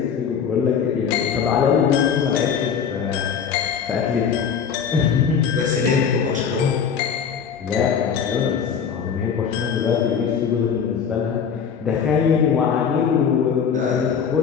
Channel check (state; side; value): quieter; right; 7.1 dB